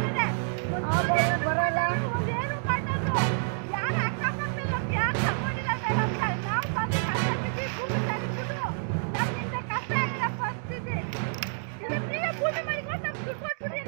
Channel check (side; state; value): left; silent; digital silence